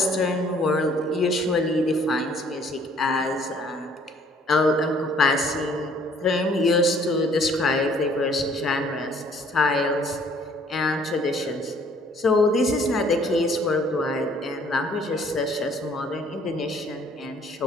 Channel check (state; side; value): normal; both; correlation 0.59